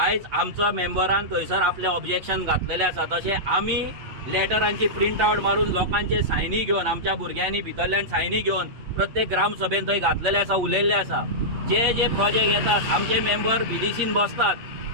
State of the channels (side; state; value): left; late; 8.5 ms